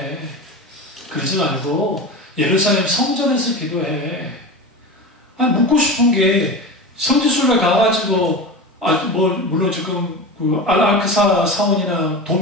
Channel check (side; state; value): both; normal; correlation 0.28